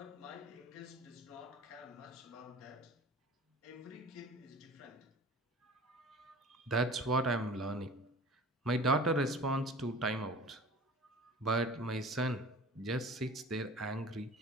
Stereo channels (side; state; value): both; normal; correlation 0.42